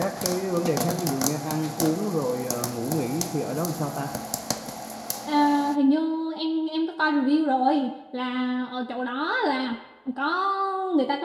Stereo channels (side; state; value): both; identical; correlation 1.00